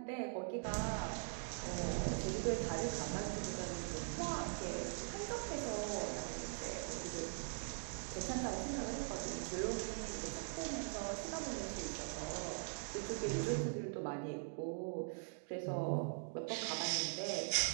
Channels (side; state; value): left; silent; digital silence